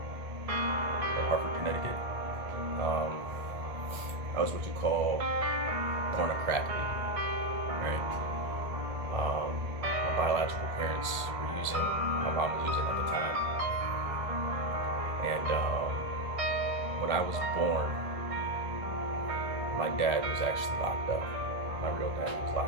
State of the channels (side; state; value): left; late; 1.4 ms